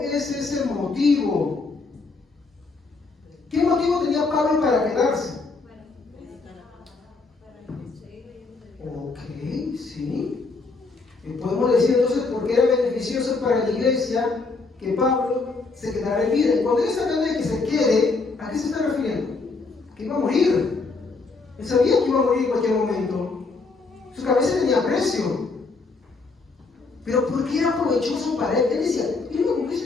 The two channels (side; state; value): right; quieter; 3.9 dB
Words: es ese motivo? ¿Qué motivo tenía Pablo para quedarse? Ok, sí. Podemos decir entonces por qué era beneficioso para la iglesia que Pablo se quedara en vida. Y cuando él está hablando de que se quede, ¿a qué se está refiriendo? Que iba a morir. Él sabía que iba a morir en cualquier momento. Su cabeza tenía precio. Pero ¿por qué era provechoso para él? Él decía, mira, con